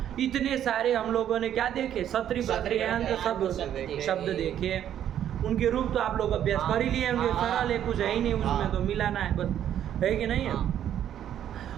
इतने सारे हम लोगों ने क्या देखे, क्षत्रिय प्रत्यांत शब्द देखे। उनके रूप तो आप लोग अभ्यास कर ही लिए होंगे, सरल है, कुछ है ही नहीं उसमें, तो मिलाना है बस, है कि नहीं है।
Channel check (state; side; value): quieter; left; 10.5 dB